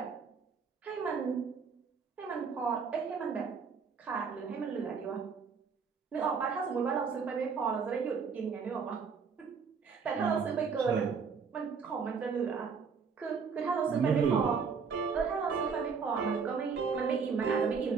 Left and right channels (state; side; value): quieter; left; 5.7 dB